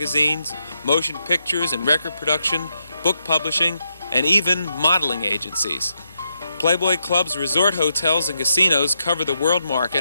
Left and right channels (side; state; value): both; inverted; correlation -0.81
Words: motion pictures and record production, book publishing, and even modeling agencies. Playboy clubs, resort hotels, and casinos cover the world